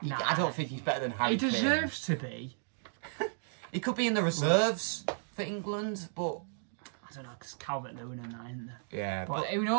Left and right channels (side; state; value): left; silent; digital silence